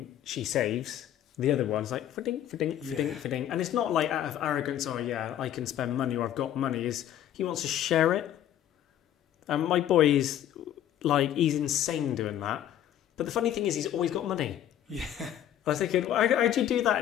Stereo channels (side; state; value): right; quieter; 11.2 dB